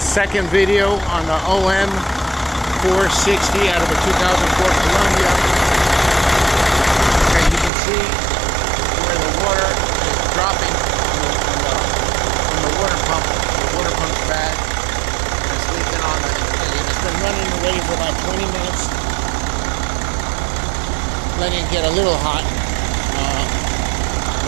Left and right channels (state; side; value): drops out; left; at 7.7 s